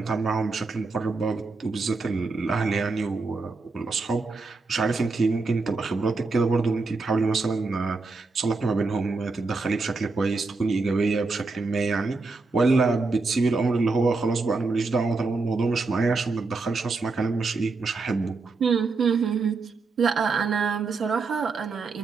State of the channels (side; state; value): left; quieter; 3.9 dB